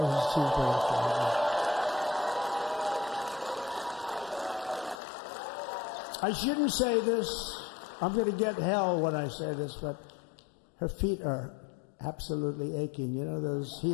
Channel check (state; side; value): drops out; right; at 5.0 s